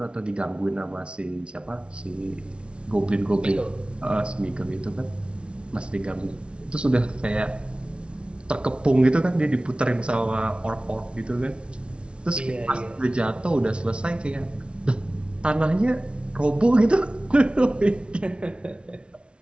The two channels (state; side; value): late; left; 0.057 ms